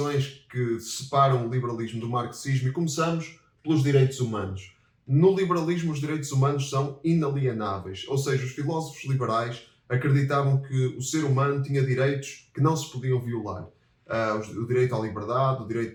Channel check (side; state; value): both; identical; correlation 1.00